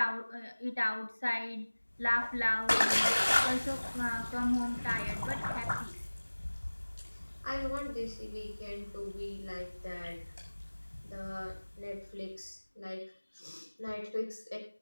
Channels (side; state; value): both; inverted; correlation -1.00